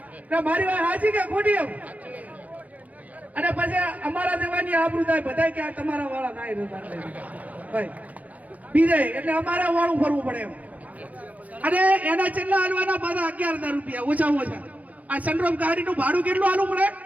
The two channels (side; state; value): left; late; 0.073 ms